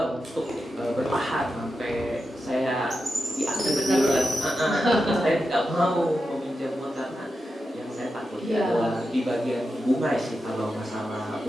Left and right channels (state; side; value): normal; both; correlation 0.89